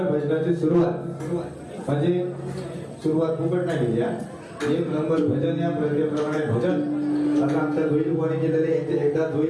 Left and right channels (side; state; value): both; identical; correlation 1.00